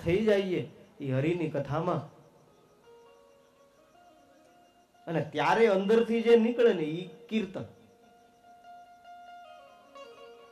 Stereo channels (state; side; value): identical; both; correlation 1.00